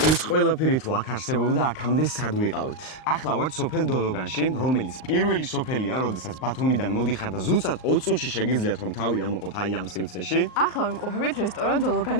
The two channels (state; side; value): late; right; 38 ms